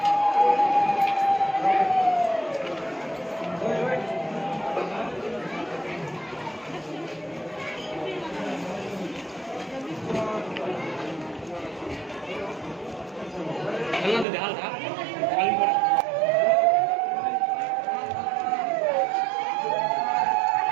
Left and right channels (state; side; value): drops out; left; at 14.2 s